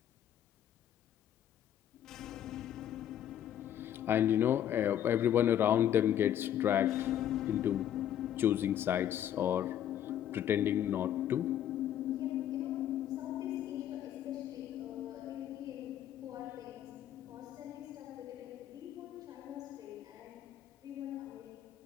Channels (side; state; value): right; quieter; 10.8 dB